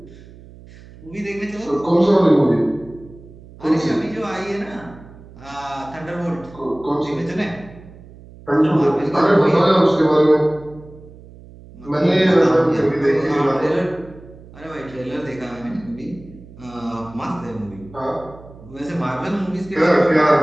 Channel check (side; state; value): right; noise; hum, 20 dB below the sound